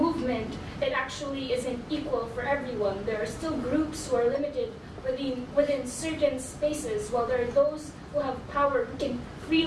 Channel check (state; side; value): identical; both; correlation 1.00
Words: it actually isn't equal for everyone. There are still groups who are limited within certain spaces, while there are those who have power who can